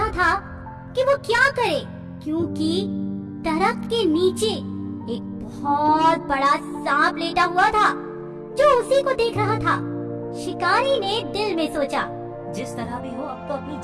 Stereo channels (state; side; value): identical; both; correlation 1.00